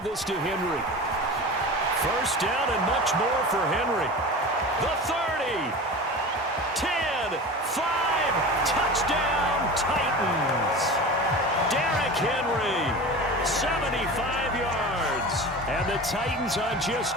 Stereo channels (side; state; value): both; normal; correlation 0.32